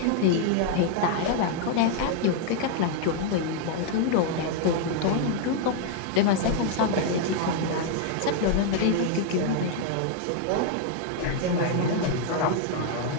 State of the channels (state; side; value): different; both; correlation 0.00